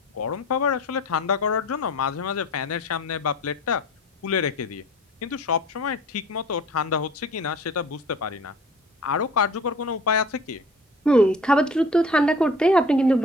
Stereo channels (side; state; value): both; normal; correlation 0.45